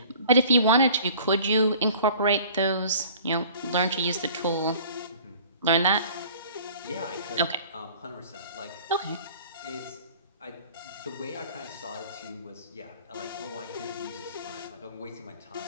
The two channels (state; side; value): inverted; both; correlation -0.48